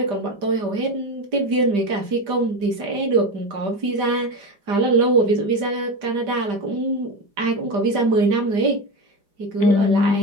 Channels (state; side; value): late; left; 5.0 ms